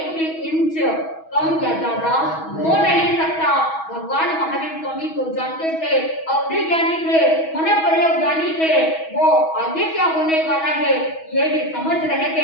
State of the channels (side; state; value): right; late; 6.2 ms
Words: भी इंच कम या ज्यादा हो नहीं सकता। भगवान महावीर स्वामी को जानते थे, अवधि ज्ञानी थे, मन प्रयोग ज्ञानी थे, वो आगे क्या होने वाला है ये भी समझ रहे